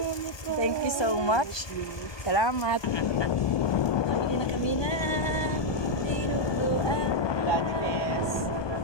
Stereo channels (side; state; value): right; late; 1.2 ms